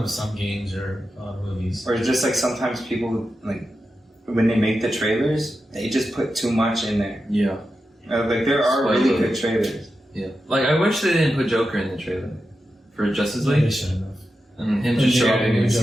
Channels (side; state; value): both; normal; correlation 0.90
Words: with some games or movies. Or just like sometimes people like when they make the trailers, they just put too much in there. Yeah. Like there are really Spoiler. good trailers. Yeah. Like I wish they didn't put Joker in the trailer for Justice They League should have. and him just show up didn't even